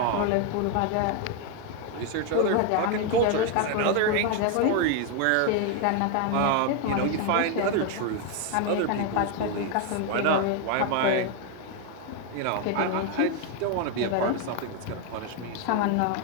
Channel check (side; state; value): both; different; correlation 0.01